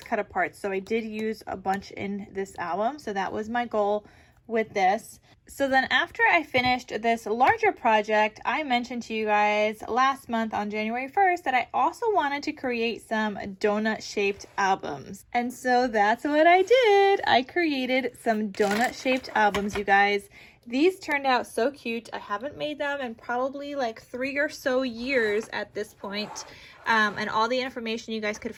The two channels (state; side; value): identical; both; correlation 1.00